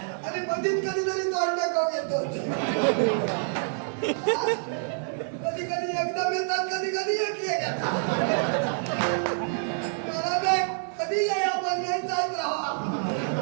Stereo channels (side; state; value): left; silent; 59 dB below the other